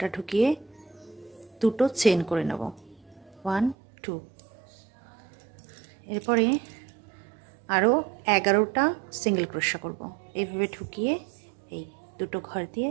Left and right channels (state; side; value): drops out; left; at 3.8 s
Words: ঢুকিয়ে দুটো চেন করে নেব, 1 2। এরপরে আরও 11টা সিঙ্গেল ক্রোশা করব। এইভাবে ঢুকিয়ে এই দুটো ঘর দিয়ে